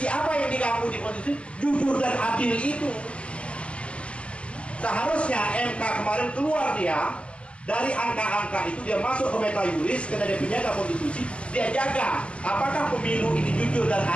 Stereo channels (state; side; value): late; right; 0.056 ms